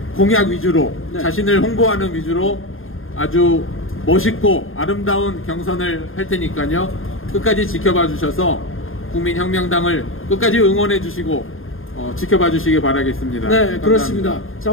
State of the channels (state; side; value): late; right; 0.60 ms